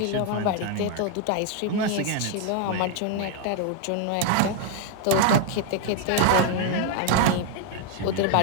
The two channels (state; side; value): different; both; correlation 0.01